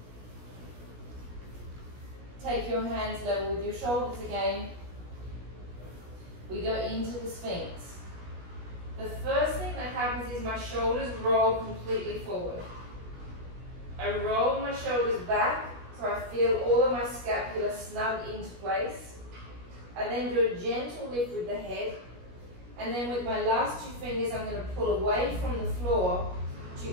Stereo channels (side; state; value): left; late; 17 ms